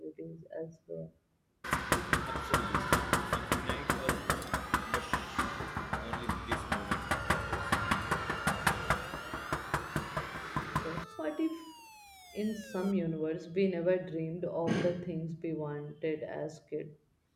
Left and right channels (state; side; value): identical; both; correlation 1.00